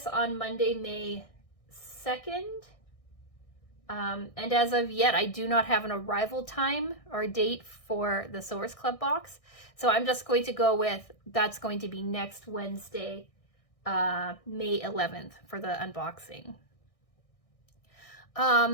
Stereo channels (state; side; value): late; right; 1.6 ms